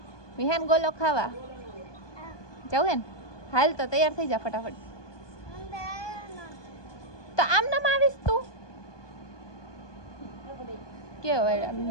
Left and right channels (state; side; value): late; right; 1.2 ms